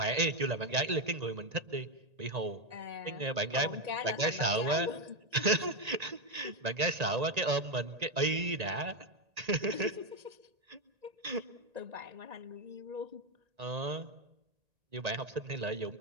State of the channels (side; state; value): left; late; 1.9 ms